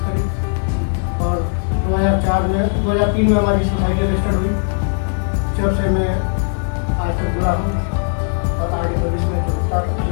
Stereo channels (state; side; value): silent; right; 55 dB below the other